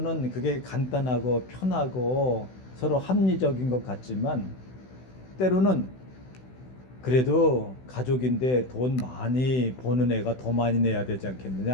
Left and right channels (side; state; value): right; late; 16 ms